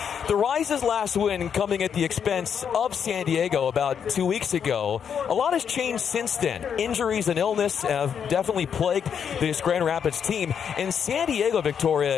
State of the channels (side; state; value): right; quieter; 7.6 dB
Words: The Rise's last win coming at the expense of San Diego about 2 weeks ago. A lot has changed since then. Injuries and illness have definitely plagued this Grand Rapids team, and San Diego,